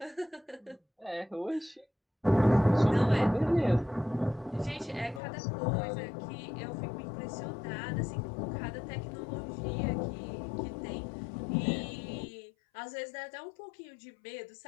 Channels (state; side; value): drops out; right; at 5.2 s